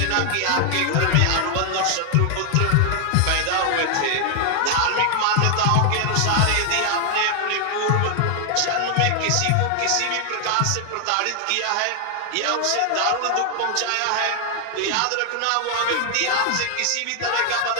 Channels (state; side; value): different; both; correlation 0.00